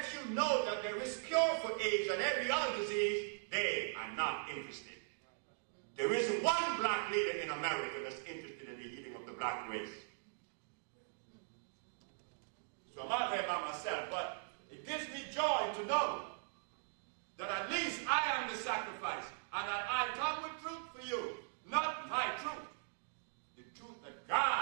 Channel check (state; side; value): silent; left; digital silence